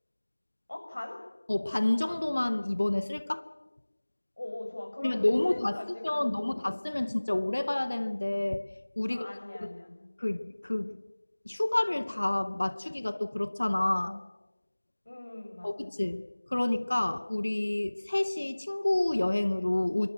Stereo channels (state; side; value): inverted; both; correlation -1.00